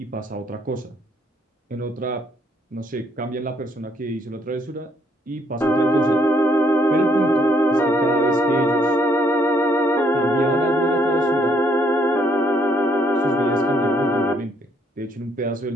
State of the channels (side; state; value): both; normal; correlation 0.69